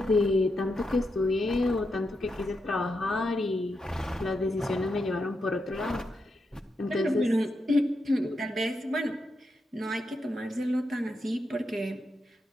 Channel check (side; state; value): both; normal; correlation 0.84